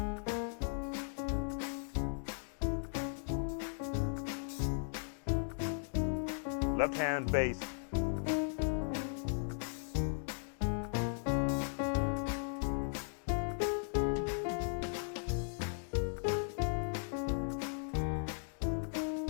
Left hand bass.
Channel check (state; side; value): silent; right; 53 dB below the other